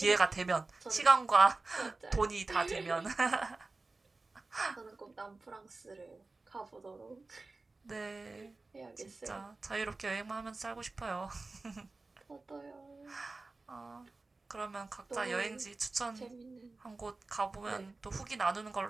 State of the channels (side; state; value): left; quieter; 3.5 dB